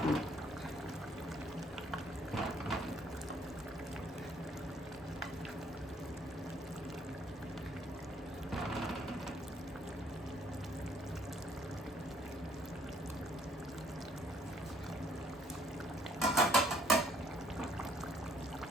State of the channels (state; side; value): normal; both; correlation 0.63